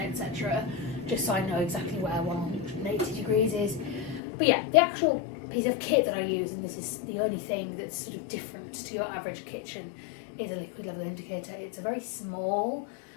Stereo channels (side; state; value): right; drops out; at 4.2 s